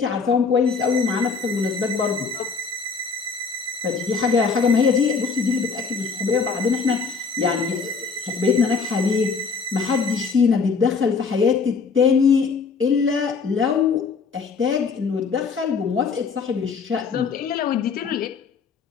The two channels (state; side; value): quieter; right; 5.1 dB